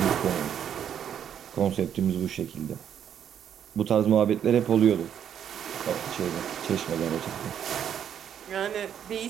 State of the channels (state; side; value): quieter; left; 9.1 dB